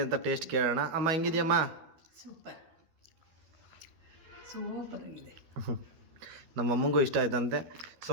ಅಂತ ಟೇಸ್ಟ್ ಕೇಳೋಣ. ಅಮ್ಮ ಹೆಂಗಿದೆಯಮ್ಮ? ಸೂಪರ್ ಆಗಿದೆ. ನಮ್ಮ ಅಮ್ಮಂಗೂ ಇಷ್ಟ ಆಯ್ತಂತೆ, ಸೊ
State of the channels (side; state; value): left; late; 13 ms